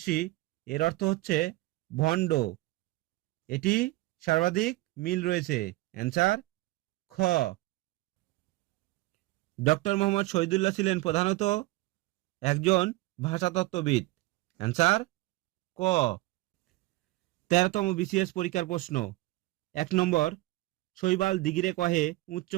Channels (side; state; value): left; quieter; 19.9 dB